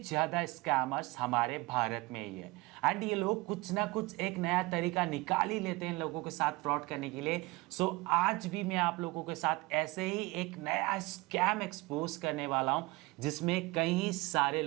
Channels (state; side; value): quieter; left; 22.9 dB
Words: स्कैमर्स हमारे भारत में ही है। एंड ये लोग कुछ ना कुछ एक नया तरीका निकाल ही लेते हैं लोगों के साथ फ्रॉड करने के लिए। सो आज भी मैं आप लोगों के साथ ऐसे ही एक नया स्कैम एक्सपोज करने वाला हूं, जिसमें कई सारे